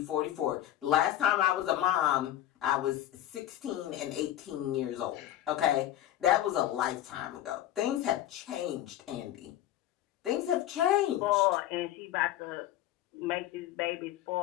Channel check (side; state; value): right; quieter; 12.8 dB